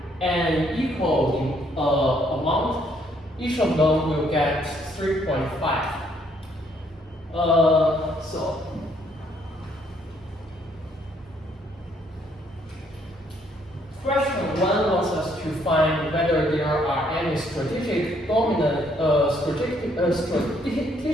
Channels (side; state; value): both; normal; correlation 0.68